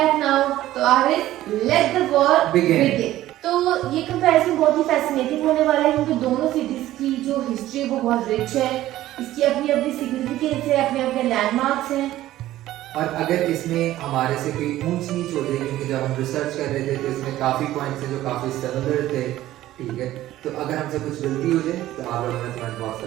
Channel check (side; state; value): left; quieter; 14.6 dB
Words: now. तो Aaris, let the war begin. तो ये कंपैरिजन बहुत ही फैसिनेटिंग होने वाला है क्योंकि दोनों सिटीज की जो हिस्ट्री है वो बहुत रिच है। इसकी अपनी अपनी सिग्निफिकेंस है, अपने अपने लैंडमार्क्स हैं। और अगर इसमें हमारे से कोई ऊंच नीच हो जाए, क्योंकि जब हम रिसर्च कर रहे थे तो इसमें काफ़ी पॉइंट्स हैं जो काफ़ी सिमिलर थे, ठीक है, तो अगर हमसे कुछ गलती हो जाए तो आप लोगों ने कमेंट बॉक्स